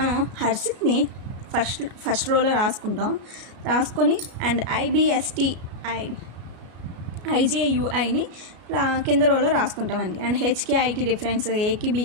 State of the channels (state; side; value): late; left; 33 ms